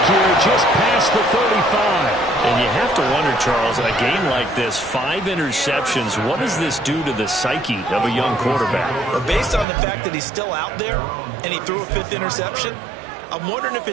here just past the 35. And you have to wonder, Charles, a game like this, 5 interceptions, what does this do to the psyche of a young quarterback? But based on the fact that he's still out there and he threw a 5th interception, I'm wondering if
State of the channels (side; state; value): left; drops out; at 9.7 s